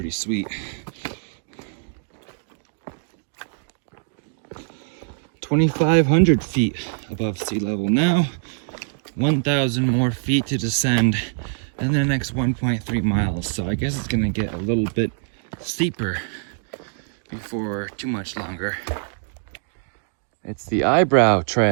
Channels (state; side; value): silent; left; digital silence